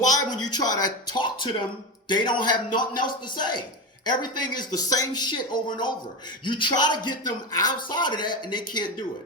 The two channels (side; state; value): both; normal; correlation 0.18